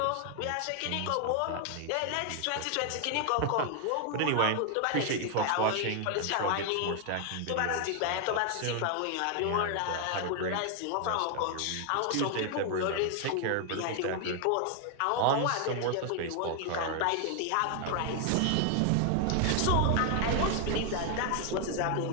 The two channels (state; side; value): different; both; correlation 0.00